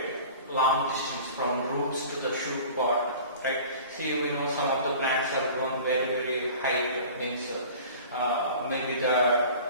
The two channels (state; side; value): inverted; both; correlation -0.42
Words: long distance from roots to the shoot pod. Right? See, we know some of the plants are grown very high, means maybe the